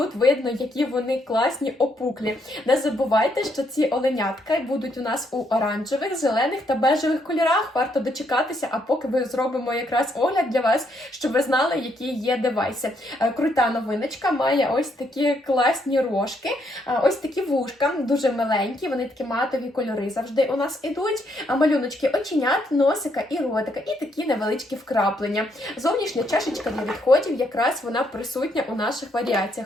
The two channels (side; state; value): both; normal; correlation 0.74